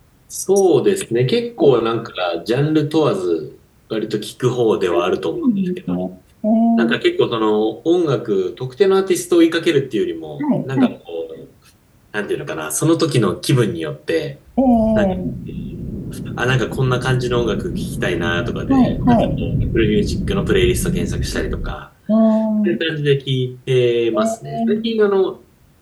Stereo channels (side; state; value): both; identical; correlation 1.00